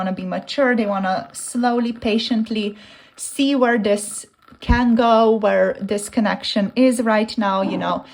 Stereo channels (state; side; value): identical; both; correlation 1.00